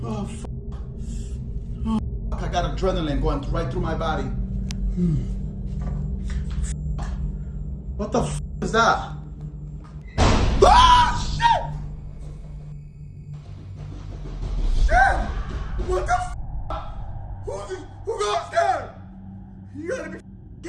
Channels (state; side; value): identical; both; correlation 1.00